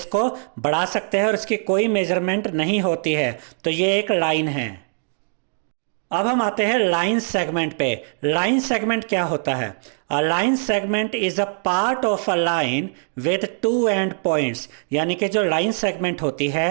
बढ़ा सकते हैं और इसकी कोई मेजरमेंट नहीं होती है, तो ये एक लाइन है। अब हम आते हैं लाइन सेगमेंट पे। लाइन सेगमेंट क्या होता है? A line segment is a part of a line with two and points. यानी कि जो लाइन सेगमेंट होती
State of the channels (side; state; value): left; silent; 63 dB below the other